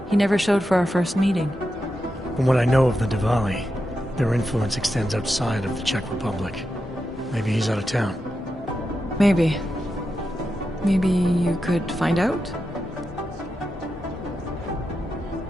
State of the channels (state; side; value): normal; both; correlation 0.88